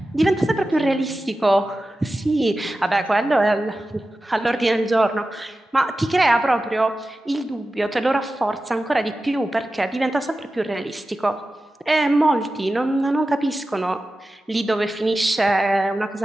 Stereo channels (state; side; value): normal; both; correlation 0.94